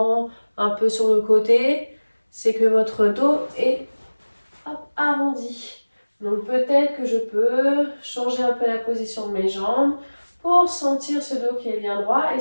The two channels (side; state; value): both; inverted; correlation -1.00